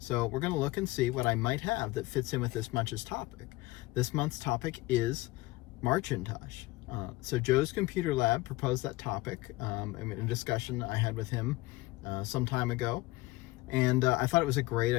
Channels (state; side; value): quieter; right; 20.3 dB